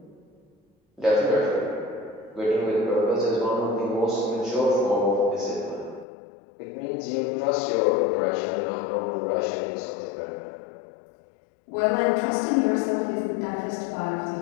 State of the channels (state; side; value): drops out; right; at 6.1 s